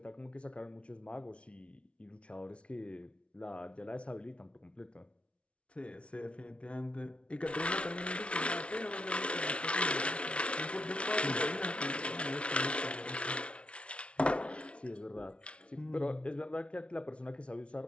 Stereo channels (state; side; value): late; right; 0.060 ms